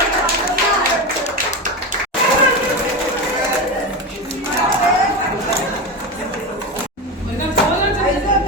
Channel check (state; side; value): normal; both; correlation 0.19